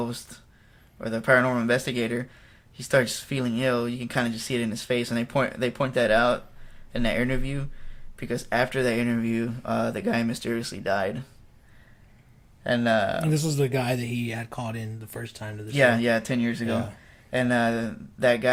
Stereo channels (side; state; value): both; identical; correlation 1.00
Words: or the paranormal investigator, he starts feeling ill. You can kind of just see it in his face, and they point that out in that interview, because after that interview, the guy mysteriously died. And this was the guy that he had called in the first time to the show. Yeah, 10 years ago. Yeah. And that